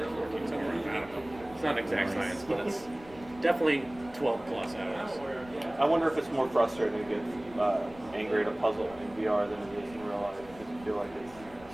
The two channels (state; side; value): noise; left; rumble, 20 dB below the sound